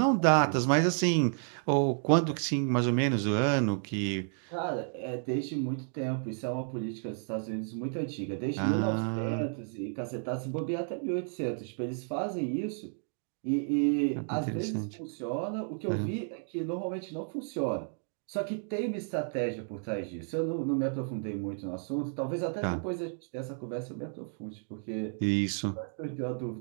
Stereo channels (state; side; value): silent; left; 57 dB below the other